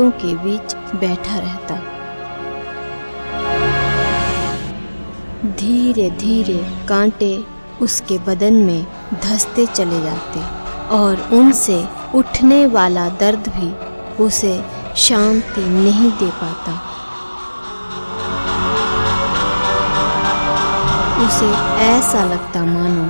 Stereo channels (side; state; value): both; inverted; correlation -1.00